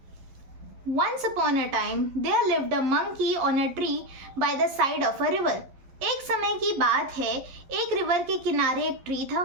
Once upon a time there lived a monkey on a tree by the side of a river. एक समय की बात है, एक river के किनारे एक ट्री था,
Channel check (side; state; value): left; late; 12 ms